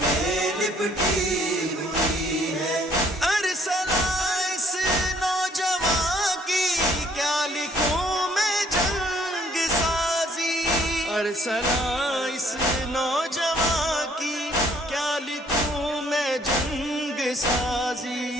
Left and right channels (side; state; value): both; normal; correlation 0.62